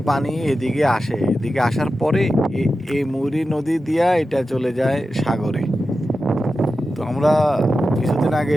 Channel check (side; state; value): both; normal; correlation 0.92